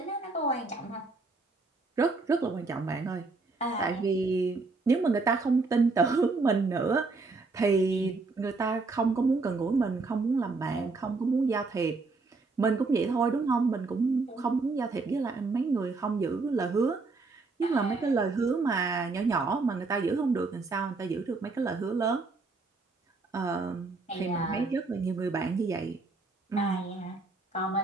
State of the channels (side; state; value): left; quieter; 3.8 dB